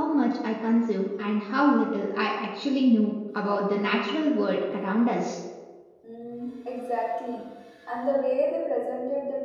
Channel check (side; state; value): both; identical; correlation 1.00